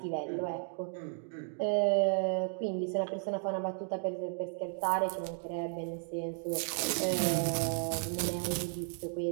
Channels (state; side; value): silent; left; 55 dB below the other